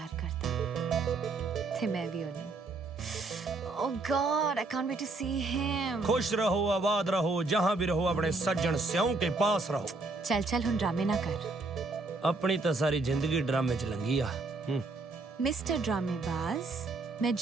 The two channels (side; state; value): left; quieter; 3.5 dB